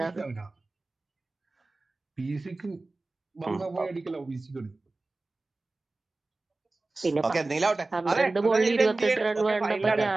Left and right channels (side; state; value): left; quieter; 3.2 dB